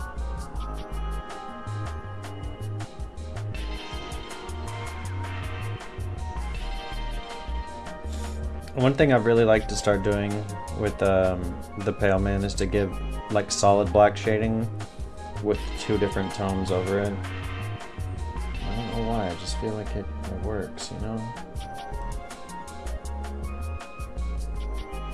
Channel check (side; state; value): both; identical; correlation 1.00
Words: One thing I'd really like to start doing with the Pale Man is to give like solid black shading with 2 different tones over it. I don't know why, I just feel like it works, you know?